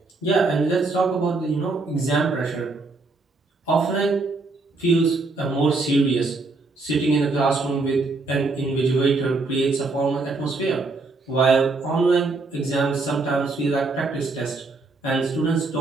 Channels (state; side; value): quieter; left; 3.6 dB